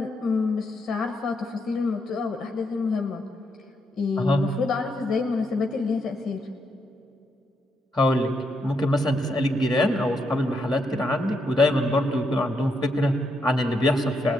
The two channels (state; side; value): normal; both; correlation 0.79